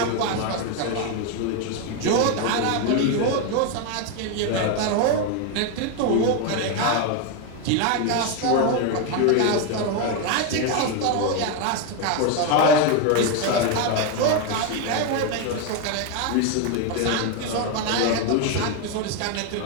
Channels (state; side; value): different; both; correlation 0.02